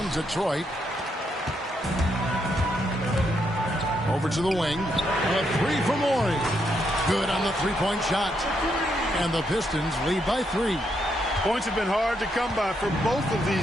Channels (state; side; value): normal; both; correlation 0.78